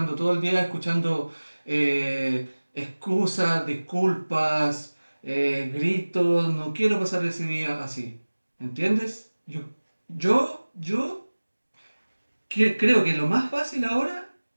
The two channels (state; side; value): inverted; both; correlation -1.00